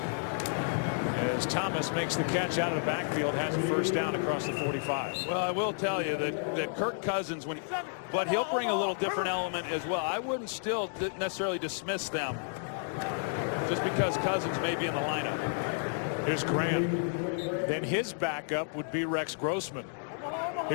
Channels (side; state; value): right; silent; digital silence